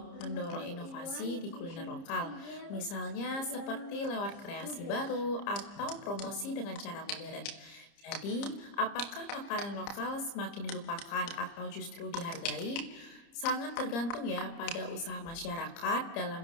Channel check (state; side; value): late; right; 30 ms